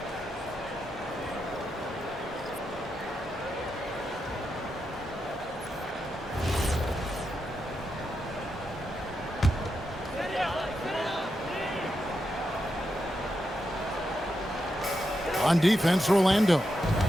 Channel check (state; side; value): normal; both; correlation 0.85